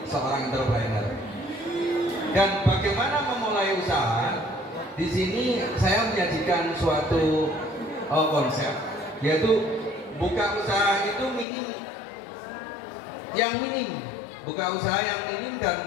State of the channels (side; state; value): right; drops out; at 11.5 s